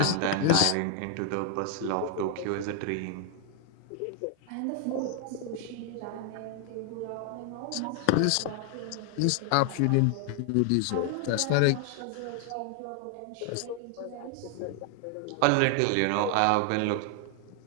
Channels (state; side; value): different; both; correlation 0.00